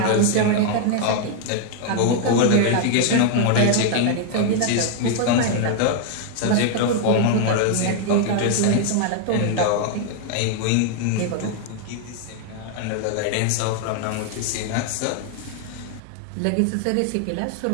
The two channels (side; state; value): both; different; correlation 0.00